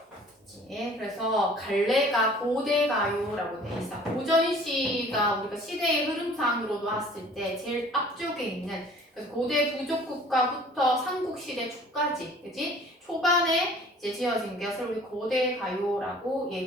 있네. 그래서 갈래가 고대가요라고 돼 있어. 고전시가 우리가 시대의 흐름상으로도 봤을 때 제일 앞쪽에 있는, 그래서 고대 부족국가부터 삼국시대 초까지, 그지? 초반에 이제 지어진 것을 우리 고대가요라고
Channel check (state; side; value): normal; both; correlation 0.51